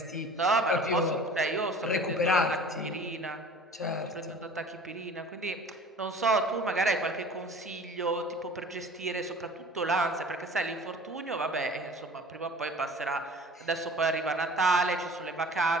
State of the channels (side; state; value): both; normal; correlation 0.44